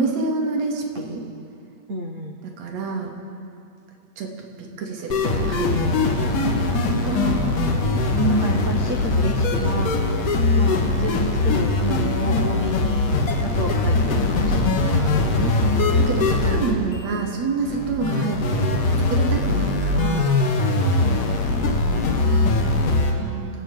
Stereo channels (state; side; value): late; left; 8.5 ms